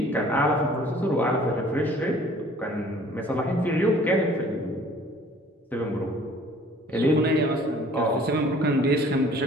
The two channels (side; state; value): both; normal; correlation 0.53